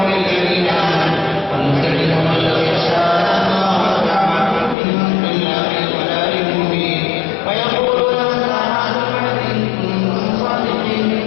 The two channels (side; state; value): right; drops out; at 4.8 s